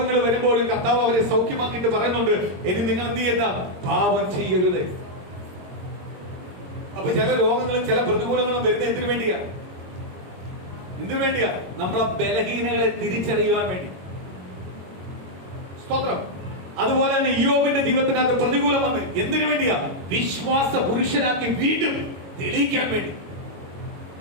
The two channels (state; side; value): late; left; 22 ms